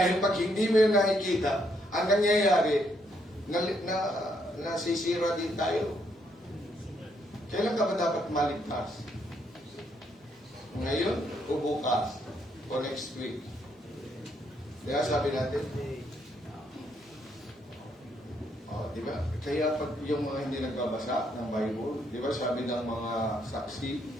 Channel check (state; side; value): normal; both; correlation 0.73